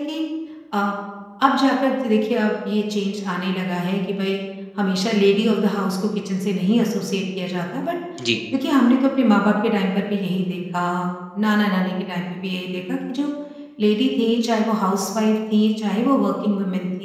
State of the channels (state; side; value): identical; both; correlation 1.00